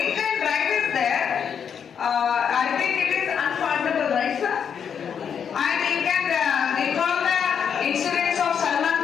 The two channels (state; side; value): quieter; right; 7.5 dB